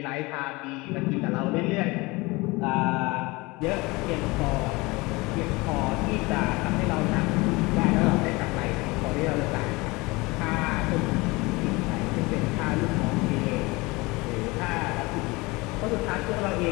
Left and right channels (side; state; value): right; quieter; 23.7 dB